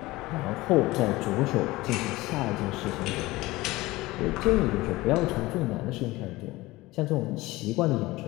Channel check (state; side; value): quieter; right; 19.7 dB